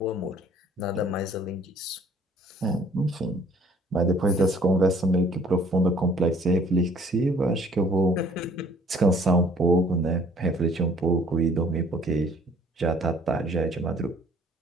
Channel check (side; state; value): both; normal; correlation 0.57